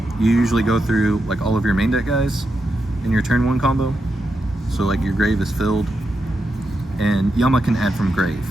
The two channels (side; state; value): both; normal; correlation 0.86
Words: you usually go through like all of your main deck guys in your turn 1 combo. So like your grave is filled, and Yama can add from grave.